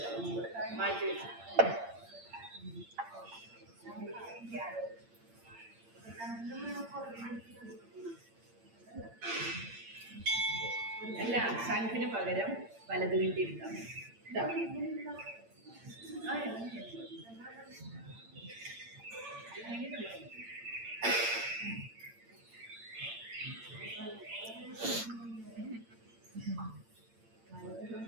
മാറ്റി വെച്ചു. അല്ല, ശംഖിന് പകരം വലത് കിണ്ടി എടുക്കാം.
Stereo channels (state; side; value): late; left; 8.8 ms